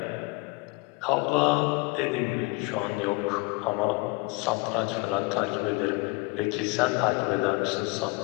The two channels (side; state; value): right; quieter; 25.6 dB